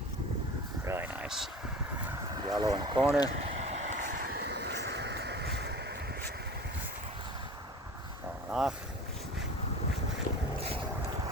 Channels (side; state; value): both; normal; correlation 0.38